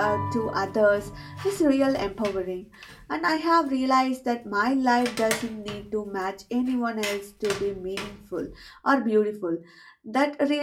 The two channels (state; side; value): identical; both; correlation 1.00